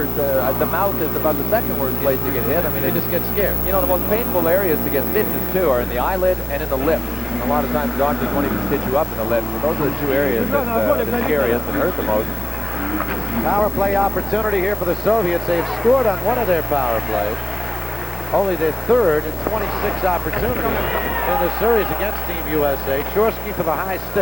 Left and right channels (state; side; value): noise; left; hiss, 19 dB below the sound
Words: The mouth is about the second worst place to get hit. I mean, you just get scared. You know, the most painful areas to get stitches, too, are in the eyelid and in the lips. And a lot of times, doctors won't even stitch you up in the lips. So those are the two areas that are the scariest and hurt the most. Power play opportunity here for the Soviets. They've scored on one of their power plays. Only their third in 26 opportunities in the series against Team USA. Chorsky for the high